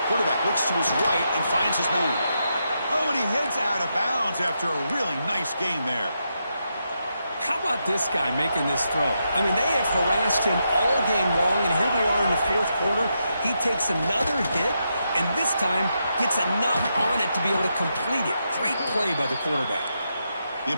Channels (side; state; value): both; inverted; correlation -0.83